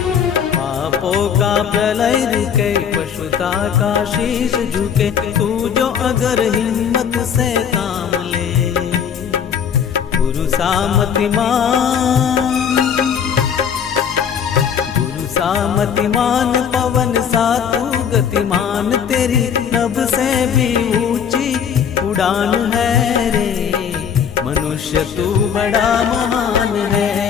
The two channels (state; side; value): quieter; right; 7.8 dB